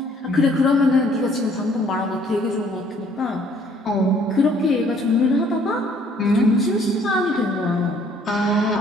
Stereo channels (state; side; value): normal; both; correlation 0.60